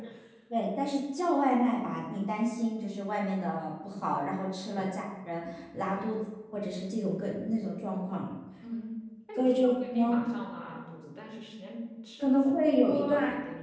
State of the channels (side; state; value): both; identical; correlation 1.00